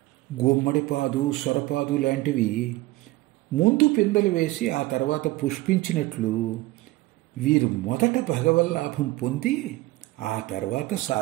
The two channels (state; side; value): quieter; left; 18.8 dB